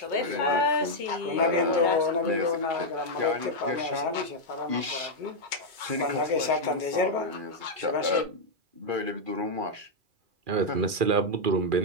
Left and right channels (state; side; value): late; left; 2.4 ms